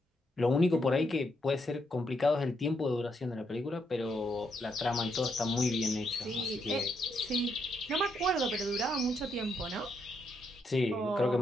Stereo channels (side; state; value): both; normal; correlation 0.78